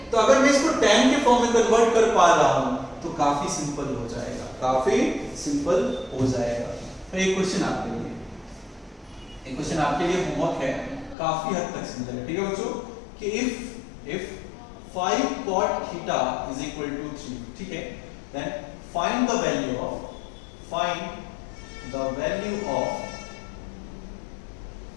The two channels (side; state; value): right; drops out; at 11.2 s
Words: तो अगर मैं इसको tan के फॉर्म में कन्वर्ट कर पा रहा हूं तो काफी सिंपल हो जाएगा, काफी सिंपल हो जाएगा। तो एक क्वेश्चन आपके लिए, एक क्वेश्चन आपके लिए होमवर्क है, काफी हद तक सिंपल है, ठीक है बच्चों, कि if 5 cot theta is equal to 3, ठीक है, then find the value of 5